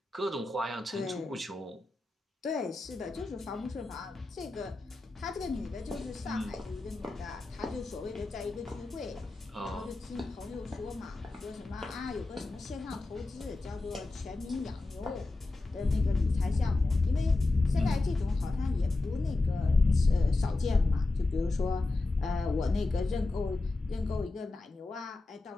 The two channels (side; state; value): right; quieter; 3.1 dB